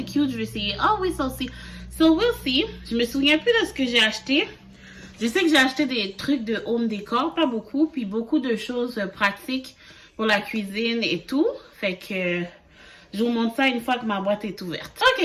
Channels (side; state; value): both; identical; correlation 1.00